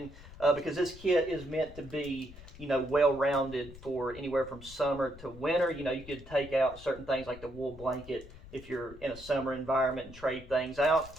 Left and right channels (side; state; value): left; noise; rumble, 17 dB below the sound